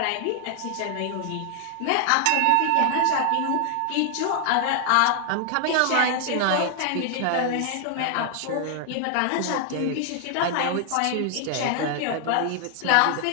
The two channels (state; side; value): different; both; correlation 0.00